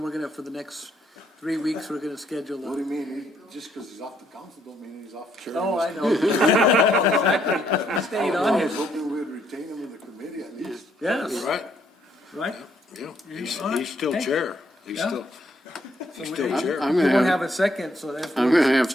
we're gonna, for the next 3 weeks, we're gonna schedule What do a. you mean? Just because he's off the council don't mean he's off the chair. Oh, I know. Exactly. He stayed on I here. was hoping we would retain him in the committee at least. Yes, Right, right? yeah, All he's still right. chair. He's Yeah. still chair. I'm We gonna won't have, have a second, so that's. I'm gonna have to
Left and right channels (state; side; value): normal; both; correlation 0.71